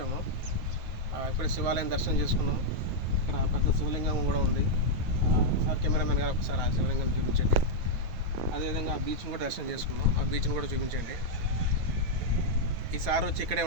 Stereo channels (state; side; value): late; left; 9.4 ms